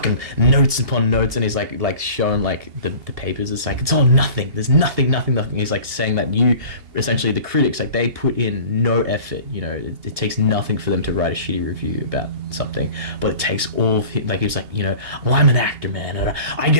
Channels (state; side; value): late; left; 2.8 ms